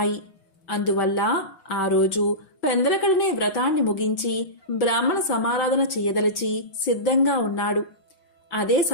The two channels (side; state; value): right; late; 5.5 ms